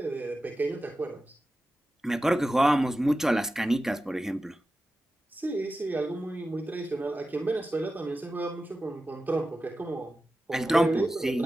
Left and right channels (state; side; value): normal; both; correlation 0.93